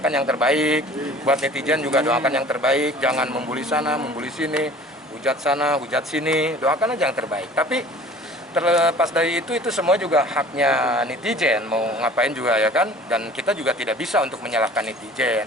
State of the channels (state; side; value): normal; both; correlation 0.46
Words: yang terbaik. Buat netizen juga doakan yang terbaik. Jangan membuli sana, membuli sini, hujat sana, hujat sini. Doakan aja yang terbaik. Tapi terlepas dari itu semua juga haknya netizen. Mau ngapain juga ya kan. Dan kita juga tidak bisa untuk menyalahkan netizen.